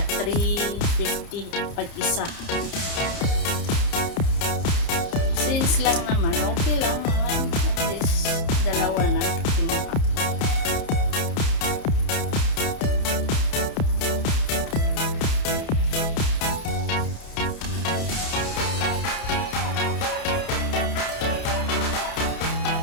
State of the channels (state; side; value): late; right; 30 ms